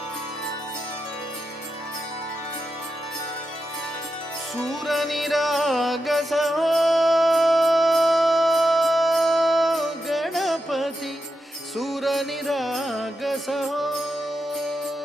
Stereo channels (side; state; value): both; normal; correlation 0.87